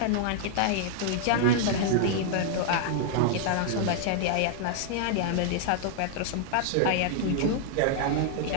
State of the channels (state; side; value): different; both; correlation -0.01